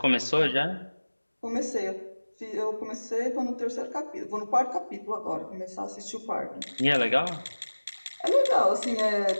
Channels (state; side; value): inverted; both; correlation -1.00